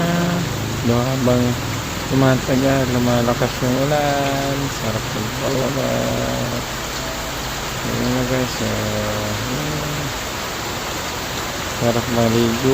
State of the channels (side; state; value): both; identical; correlation 1.00